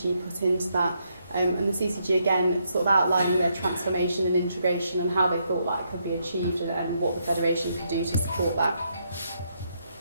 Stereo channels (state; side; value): inverted; both; correlation -0.77